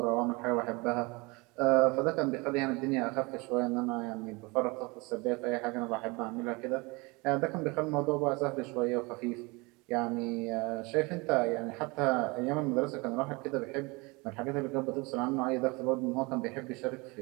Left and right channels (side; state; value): left; quieter; 26.2 dB